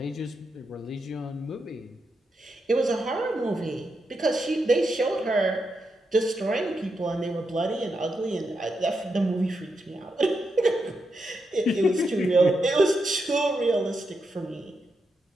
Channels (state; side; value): normal; both; correlation 0.84